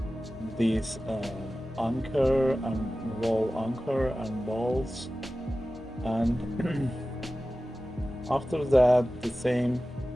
this anchor and wall anchor and balls, and after that the same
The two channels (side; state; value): both; normal; correlation 0.95